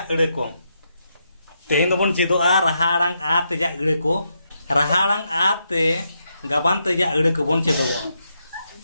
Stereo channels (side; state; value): both; inverted; correlation -0.81